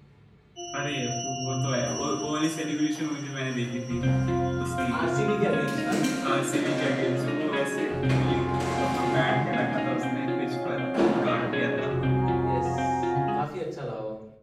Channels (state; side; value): identical; both; correlation 1.00